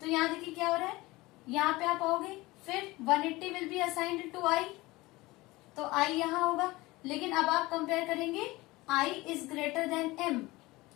यहाँ देखिए क्या हो रहा है, यहाँ पे आप आओगे, फिर 180 will be assigned to I, तो I यहाँ होगा. लेकिन अब आप कंपेयर करेंगे I is greater then M,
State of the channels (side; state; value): right; quieter; 20.7 dB